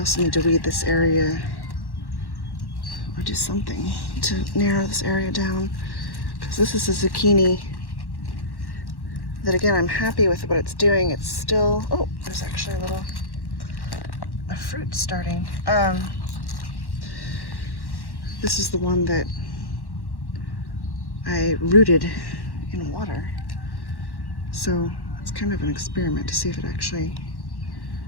need to weed this area, or do something to narrow this area down, because this is a zucchini that, again, I'm happy with what it's doing. It's still, oh, there's actually a fruit starting. This is the one that I rooted in water. So it's kind of an experiment to see if it actually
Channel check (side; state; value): right; late; 1.1 ms